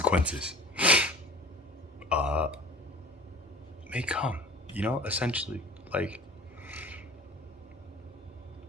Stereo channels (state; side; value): normal; both; correlation 0.44